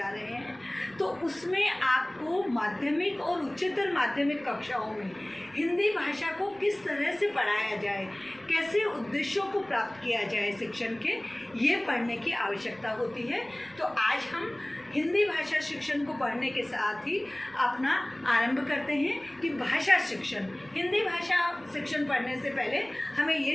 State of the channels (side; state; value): right; noise; rumble, 28 dB below the sound